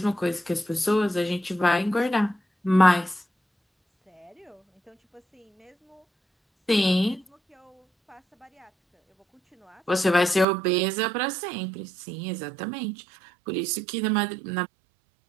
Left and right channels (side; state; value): left; drops out; at 10.5 s